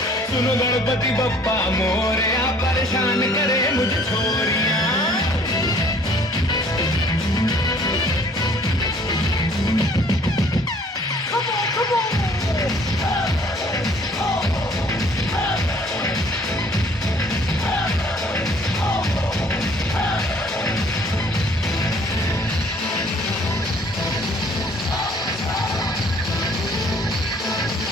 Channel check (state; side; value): normal; both; correlation 0.57